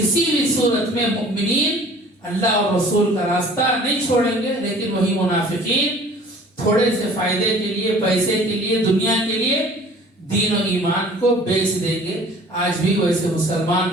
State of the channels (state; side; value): normal; both; correlation 0.49